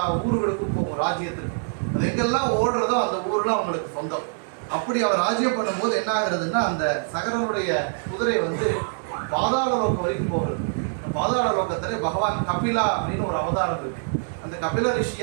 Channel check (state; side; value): silent; left; digital silence